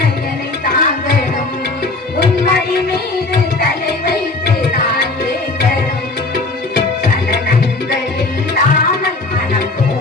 என்னை தாங்கணும், உன்மடி மீது தலை வைத்து நான் ஏங்கணும். சலனங்கள் இல்லாமல் மனம்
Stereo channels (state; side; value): quieter; right; 3.3 dB